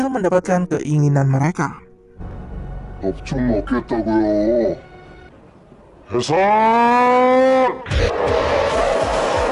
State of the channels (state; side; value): identical; both; correlation 1.00